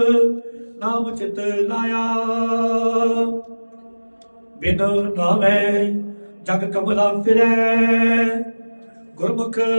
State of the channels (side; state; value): both; inverted; correlation -1.00